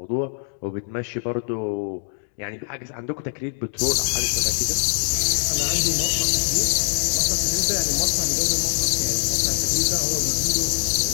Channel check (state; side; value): silent; right; digital silence